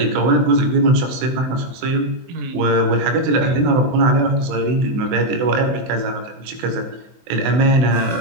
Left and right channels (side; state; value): left; late; 23 ms